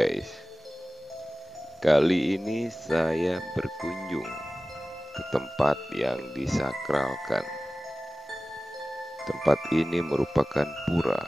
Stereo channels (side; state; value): both; normal; correlation 0.96